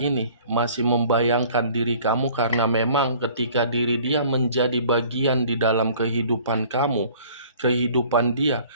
masih membayangkan diri kamu, karena memang ketika diri dia menjadi bagian di dalam kehidupan kamu, kehidupan dia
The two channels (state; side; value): inverted; both; correlation -0.51